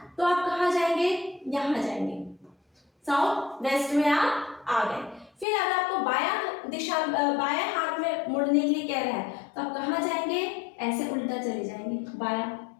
तो आप कहाँ जाएंगे, यहाँ जाएंगे, साउथ वेस्ट में आप आ गए। फिर अगर आपको बायां हाथ में मुड़ने के लिए कह रहा है तो आप कहाँ जाएंगे, ऐसे उल्टा चले जाएंगे बायां,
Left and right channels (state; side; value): drops out; right; at 5.5 s